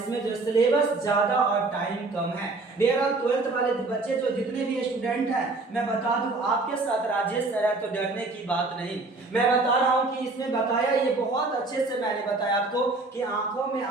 जो सिलेबस ज्यादा और टाइम कम है। डियर ऑल 12th वाले बच्चे जो जितने भी स्टूडेंट हैं मैं बता दूं आपके साथ राजेश सर है तो डरने की बात नहीं। मैं बता रहा हूं कि इसमें बताया ये बहुत अच्छे से मैंने बताया आपको कि आंखों में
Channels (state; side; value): quieter; left; 3.4 dB